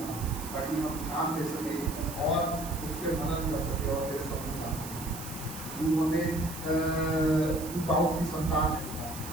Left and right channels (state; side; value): noise; right; hiss, 11 dB below the sound